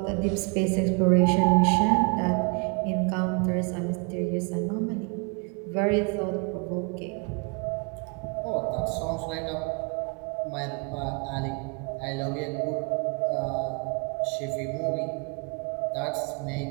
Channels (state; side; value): quieter; left; 33.7 dB